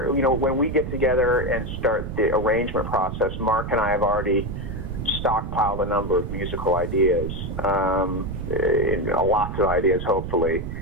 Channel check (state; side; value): noise; right; rumble, 6 dB below the sound